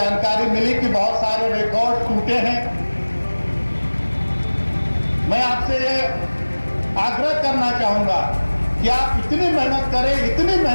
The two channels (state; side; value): inverted; both; correlation -1.00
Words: मिली कि बहुत सारे रिकॉर्ड टूटे हैं। मैं आपसे ये आग्रह करना चाहूंगा कि आप इतनी मेहनत